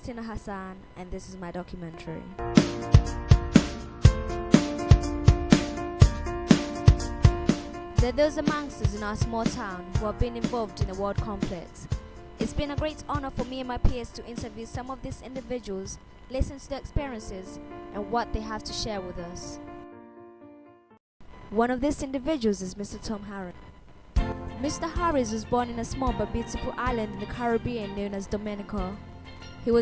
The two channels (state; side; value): identical; both; correlation 1.00